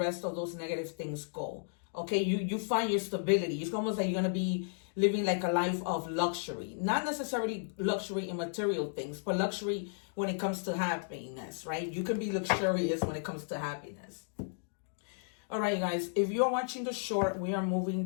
of those negative things go. Okay, you find your stability. It's almost like you're going to be living like a life of luxury. Not necessarily luxury in material things, but luxury when it comes to happiness, right? You can be luxurious when it comes to happiness. All right, you guys, if you're watching the short, we are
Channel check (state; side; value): silent; right; digital silence